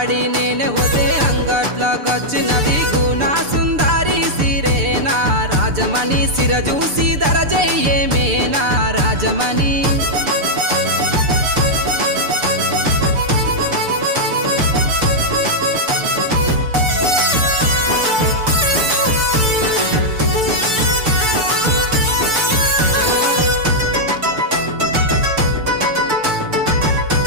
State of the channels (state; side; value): late; left; 6.8 ms